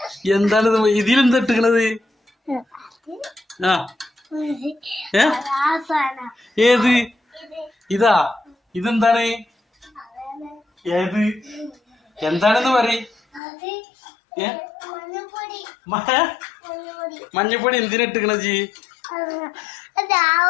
എന്താണിത്? ഇതിലെന്താ ഇട്ടിക്കണത്? ആ ഏത് ഇതാ? ഇതെന്താണ്? ഏത് എന്താണെന്ന് പറ. മഞ്ഞപ്പൊടി എന്തിനാ ഇട്ടിക്കണ ജി?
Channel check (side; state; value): right; drops out; at 13.4 s